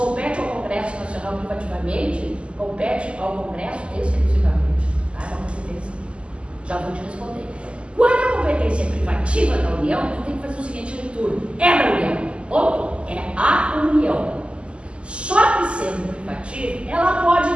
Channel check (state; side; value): late; left; 0.053 ms